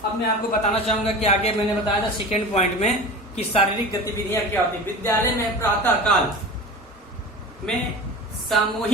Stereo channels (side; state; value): both; normal; correlation 0.33